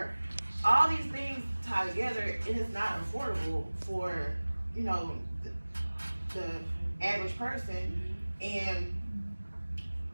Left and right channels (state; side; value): inverted; both; correlation -1.00